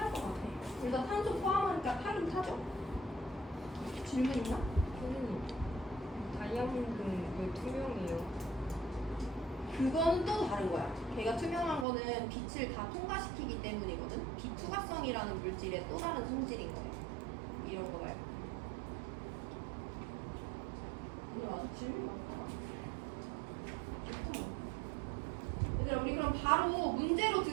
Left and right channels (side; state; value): left; drops out; at 11.9 s